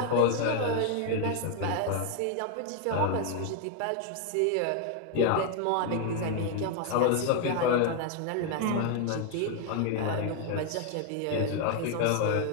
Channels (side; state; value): both; different; correlation 0.00